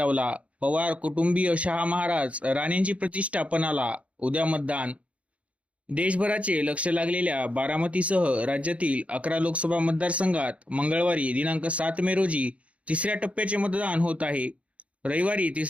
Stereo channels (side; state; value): left; late; 0.064 ms